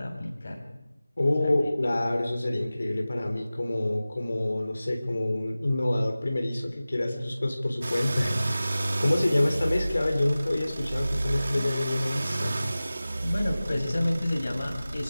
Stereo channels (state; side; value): inverted; both; correlation -0.97